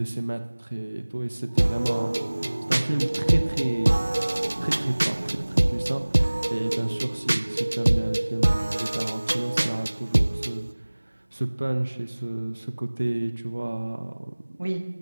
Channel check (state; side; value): inverted; both; correlation -1.00